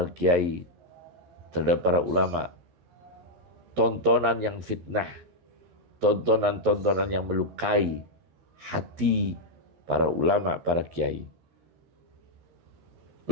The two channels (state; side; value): late; left; 13 ms